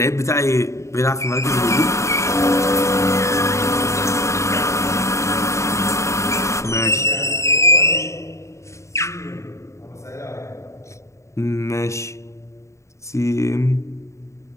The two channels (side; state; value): right; late; 0.14 ms